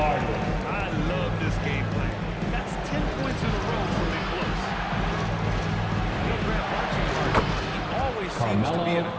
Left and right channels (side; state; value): both; identical; correlation 1.00